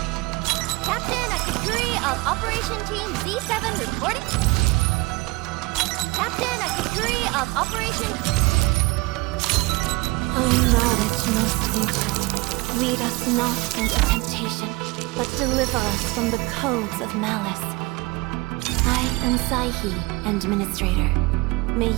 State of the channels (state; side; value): quieter; left; 23.6 dB